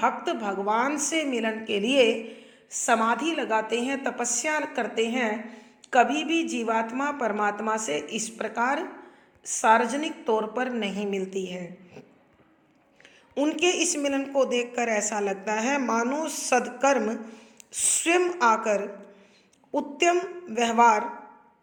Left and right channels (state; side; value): identical; both; correlation 1.00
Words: भगवान से मिलन के लिए समाधि लगाते हैं, तपस्या करते हैं। कभी भी जीवात्मा परमात्मा से इस प्रकार सार्वजनिक तौर पर नहीं मिलती है। उनके इस मिलन को देखकर ऐसा लगता है मानो सद्कर्म स्वयं आकर उत्तम व्यवहार,